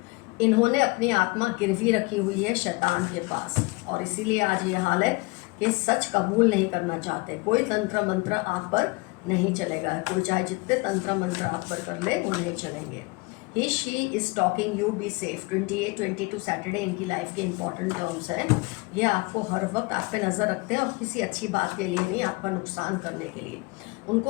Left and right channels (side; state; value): right; quieter; 26.1 dB